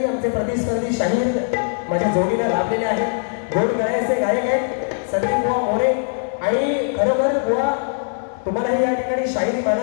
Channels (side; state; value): right; silent; 65 dB below the other